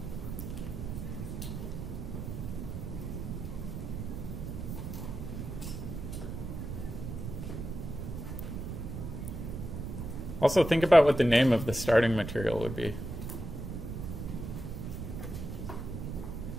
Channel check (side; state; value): right; noise; rumble, 6 dB below the sound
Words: Also, think about what the name of the starting material would be.